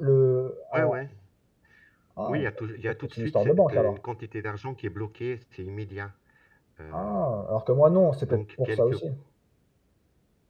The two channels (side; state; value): both; identical; correlation 1.00